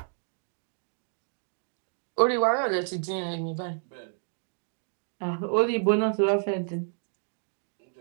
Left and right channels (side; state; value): left; silent; 58 dB below the other